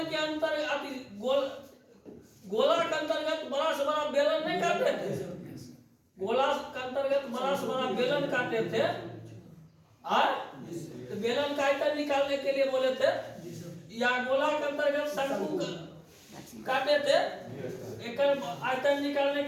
के अंतर्गत गोला के अंतर्गत बड़ा से बड़ा बेलन नहीं काटते थे, गोला के अंतर्गत बड़ा से बड़ा बेलन काटते थे, तो बेलन का आयतन निकालने के लिए बोले थे, या गोला के अंतर्गत शंकु काटे थे, एक आयतन निकालने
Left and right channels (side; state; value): both; identical; correlation 1.00